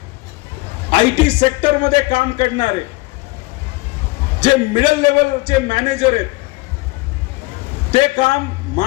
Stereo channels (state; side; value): quieter; right; 23.8 dB